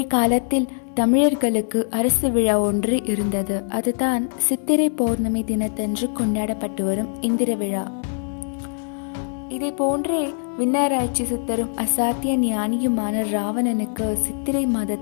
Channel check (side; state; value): right; silent; digital silence